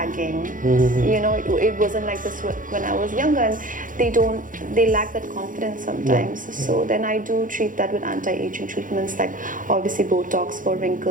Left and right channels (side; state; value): left; late; 0.39 ms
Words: You know, it wasn't like this when I was younger, and they lack that confidence sometimes. So then I do treat that with anti-aging treatments, like obviously Botox for